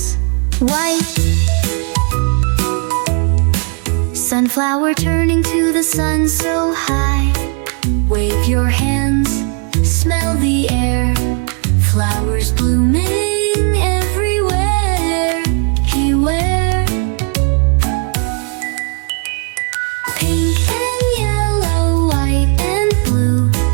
white. Sunflower turning to the sun so high. Wave your hands, smell the air. Flowers blooming everywhere. Beware. Pink and yellow, white and blue.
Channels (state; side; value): quieter; left; 39.0 dB